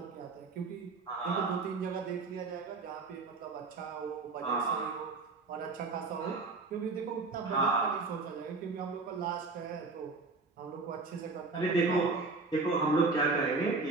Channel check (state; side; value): quieter; left; 3.9 dB